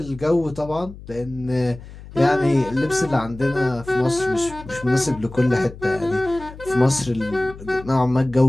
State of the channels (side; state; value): left; noise; hum, 16 dB below the sound